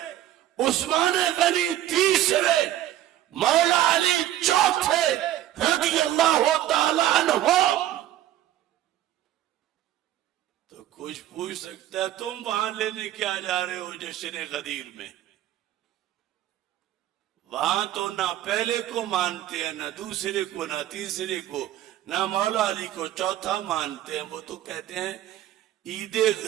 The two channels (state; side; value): quieter; left; 13.0 dB